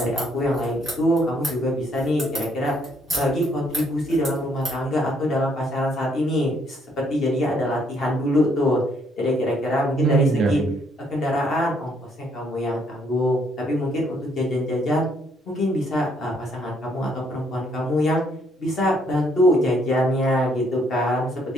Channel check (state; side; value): normal; both; correlation 0.69